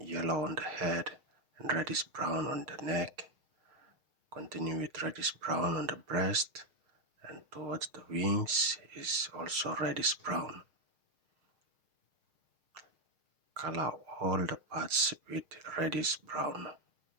yellow on the head, and reddish brown on the neck. Continue with reddish brown on the breast, and towards the wings is also reddish brown. Color all the parts with reddish brown.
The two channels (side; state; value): left; late; 6.5 ms